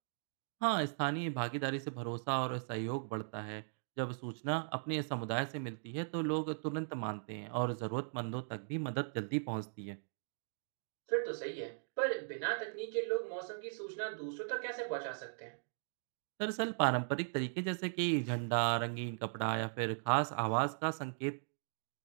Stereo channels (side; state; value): left; silent; digital silence